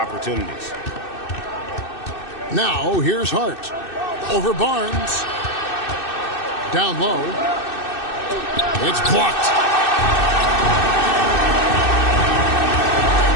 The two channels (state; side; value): late; right; 2.6 ms